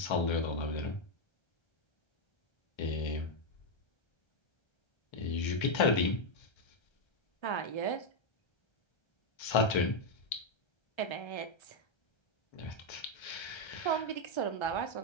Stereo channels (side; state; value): right; late; 1.3 ms